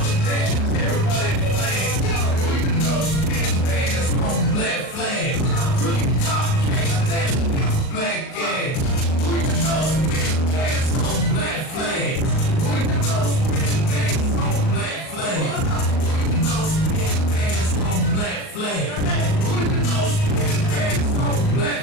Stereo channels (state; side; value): late; right; 38 ms